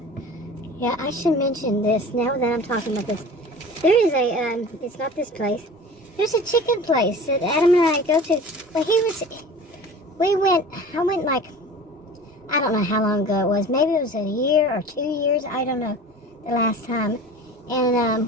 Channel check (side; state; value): both; normal; correlation 0.39